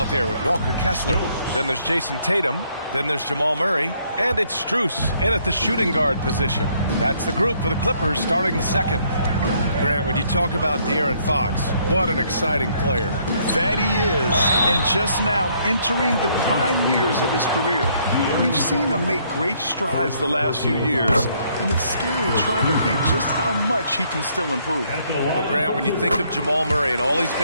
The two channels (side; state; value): both; inverted; correlation -0.68